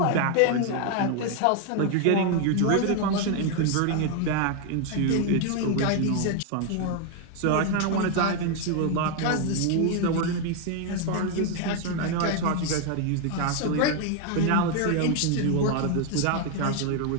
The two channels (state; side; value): different; both; correlation 0.01